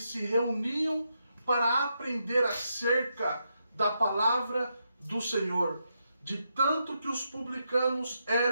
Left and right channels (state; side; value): inverted; both; correlation -0.83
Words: se reuniam para aprender acerca da palavra do Senhor. De tanto que os publicanos